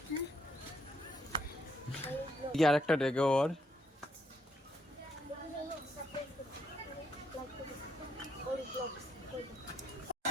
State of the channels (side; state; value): both; normal; correlation 0.73